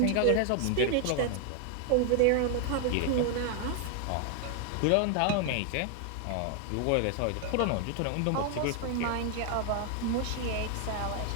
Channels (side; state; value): both; different; correlation 0.00